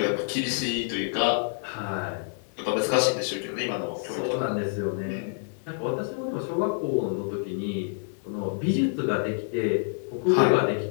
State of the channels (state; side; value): silent; right; digital silence